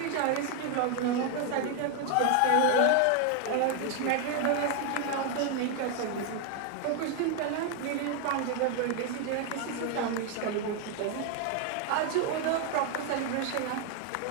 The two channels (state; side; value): different; both; correlation 0.01